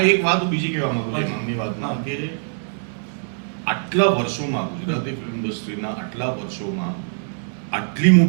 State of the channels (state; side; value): silent; left; digital silence